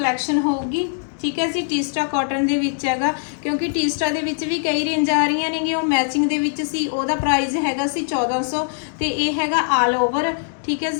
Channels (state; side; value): silent; right; digital silence